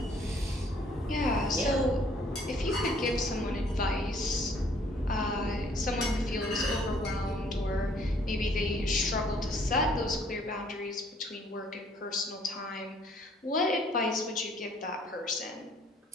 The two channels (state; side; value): normal; both; correlation 0.61